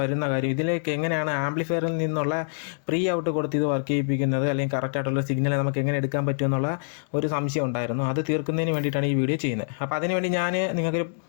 കാര്യം, ഇതിലേക്ക് എങ്ങനെയാണ് ആംപ്ലിഫയറിൽ നിന്നുള്ള പ്രീ ഔട്ട് കൊടുത്ത് ഇത് വർക്ക് ചെയ്യിപ്പിക്കുന്നത്, അല്ലെങ്കിൽ കറക്റ്റായിട്ടുള്ള സിഗ്നൽ നമുക്ക് എങ്ങനെ എടുക്കാൻ പറ്റുമെന്നുള്ള ഒരു സംശയം ഉണ്ടായിരുന്നു. അത് തീർക്കുന്നതിന് വേണ്ടിയിട്ടാണ് ഈ വീഡിയോ ചെയ്യുന്നത്. അപ്പോൾ അതിനുവേണ്ടി ഞാൻ നിങ്ങൾക്കൊരു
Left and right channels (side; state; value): right; silent; digital silence